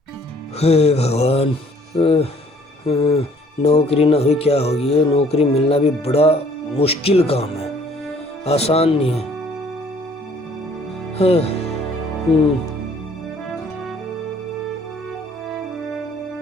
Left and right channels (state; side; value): normal; both; correlation 0.59